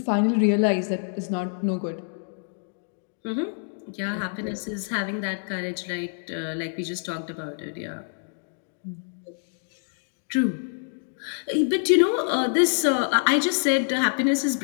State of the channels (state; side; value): silent; right; digital silence